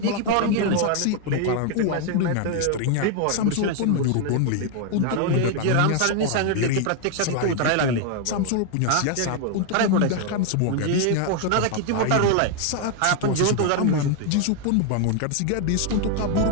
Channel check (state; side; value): different; both; correlation 0.00